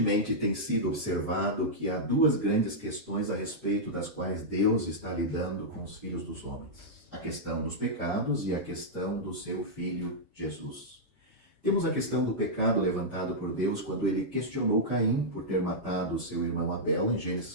tem sido observado que há duas grandes questões a respeito das quais Deus está lidando com os filhos dos homens: a questão dos pecados e a questão do seu Filho Jesus. Temos a questão do pecado levantado por Deus quando ele questionou Caim por ter matado seu irmão Abel, em Gênesis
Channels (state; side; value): normal; both; correlation -0.08